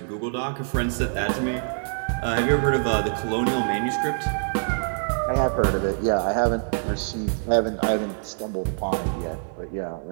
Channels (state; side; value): silent; left; 62 dB below the other